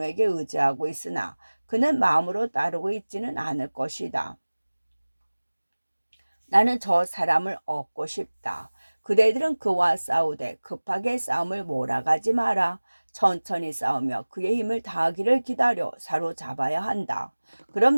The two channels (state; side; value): inverted; both; correlation -1.00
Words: 의지하고 있으나 그는 마음으로 따르고 있지는 않을 것이다. 나는 저 사람을 얻고 싶다. 그대들은 그와 싸우되 급하게 싸움을 몰아가지 마라. 천천히 싸우며 그의 힘을 다하기를 기다려 사로잡아야 한다.